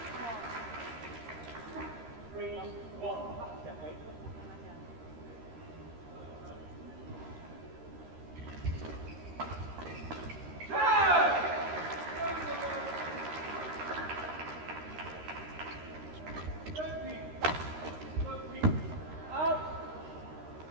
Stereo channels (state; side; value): late; left; 13 ms